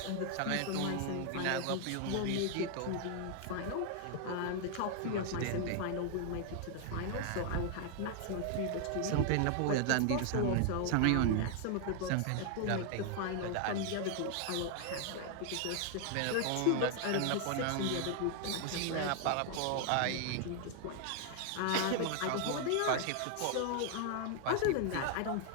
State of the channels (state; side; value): different; both; correlation 0.00